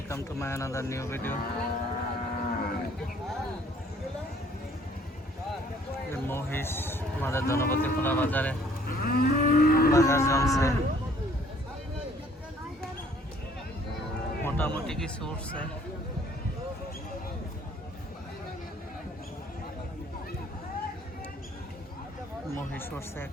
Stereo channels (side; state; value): both; normal; correlation 0.59